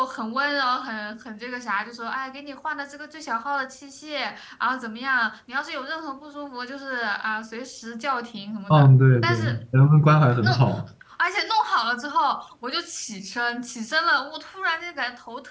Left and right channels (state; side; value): identical; both; correlation 1.00